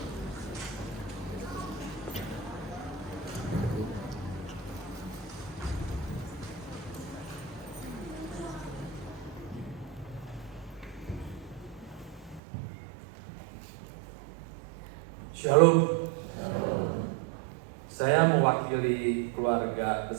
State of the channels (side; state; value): left; drops out; at 12.4 s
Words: Shalom. Saya mewakili keluarga